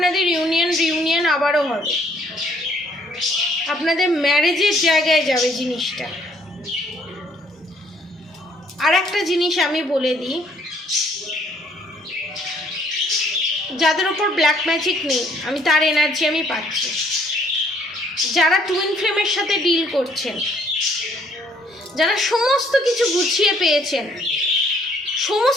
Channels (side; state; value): both; normal; correlation 0.64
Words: রিউনিয়ন আবারও হবে, আপনাদের ম্যারেজের জায়গায় যাবে জিনিসটা। আর একটা জিনিস আমি বলে দিই, যাদের ওপর ব্ল্যাক ম্যাজিক নেই, আমি তার এনার্জি আমি পাচ্ছি। যারা টুইন ফ্লেমের সাথে ডিল করছেন, যারা সমস্ত কিছু গুছিয়ে পেয়েছেন,